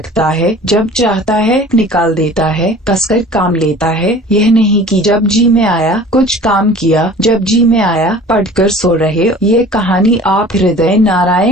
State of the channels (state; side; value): normal; both; correlation 0.44